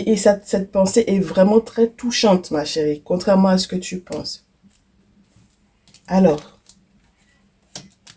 cette pensée est vraiment très touchante, ma chérie, contrairement à ce que tu penses. Alors,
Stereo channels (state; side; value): identical; both; correlation 1.00